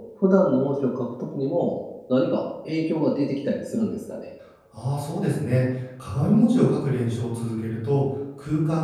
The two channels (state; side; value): identical; both; correlation 1.00